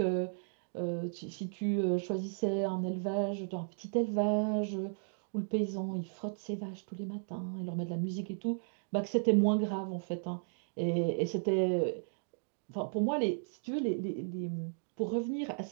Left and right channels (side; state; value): left; silent; digital silence